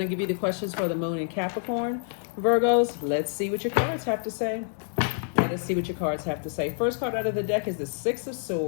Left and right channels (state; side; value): silent; right; 60 dB below the other